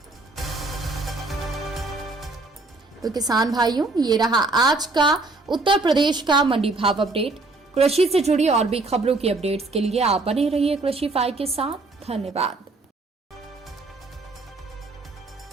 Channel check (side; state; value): left; quieter; 3.3 dB